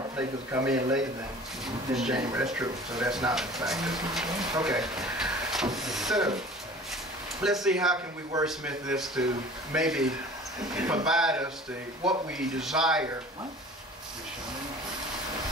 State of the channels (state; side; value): normal; both; correlation 0.44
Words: places that come in later than this January. That's true. So that's not a factor. Okay. So let's see how can we wordsmith this to maybe provide us the what we desire